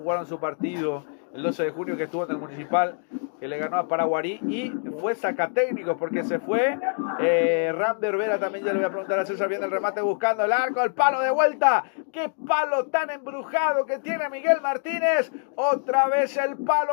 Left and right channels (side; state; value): right; silent; 61 dB below the other